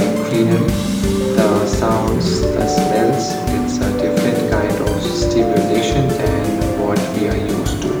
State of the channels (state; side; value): identical; both; correlation 1.00